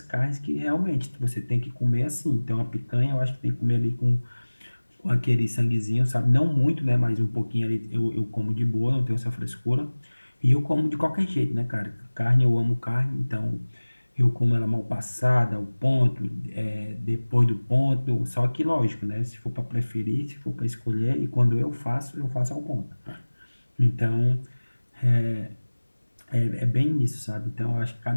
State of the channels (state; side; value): inverted; both; correlation -1.00